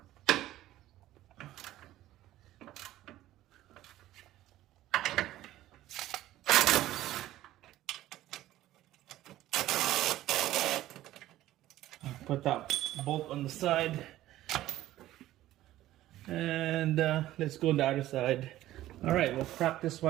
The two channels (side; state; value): left; quieter; 14.7 dB